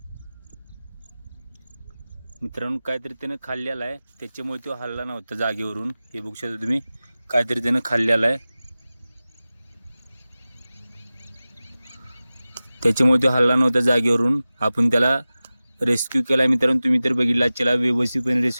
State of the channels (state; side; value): inverted; both; correlation -0.97